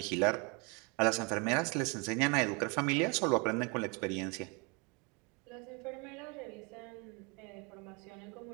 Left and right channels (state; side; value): quieter; left; 30.8 dB